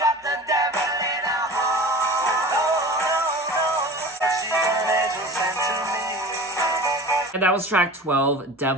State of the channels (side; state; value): both; normal; correlation 0.37